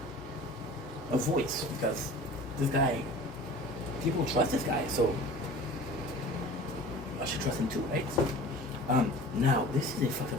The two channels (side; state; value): both; normal; correlation 0.41